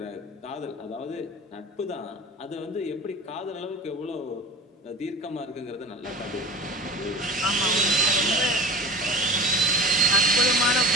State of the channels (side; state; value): both; normal; correlation 0.36